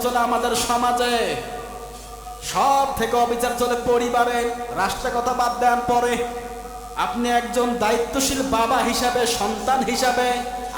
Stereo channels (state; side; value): identical; both; correlation 1.00